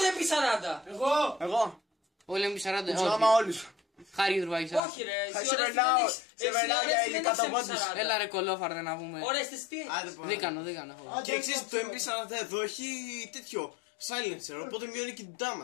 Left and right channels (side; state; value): right; drops out; at 4.8 s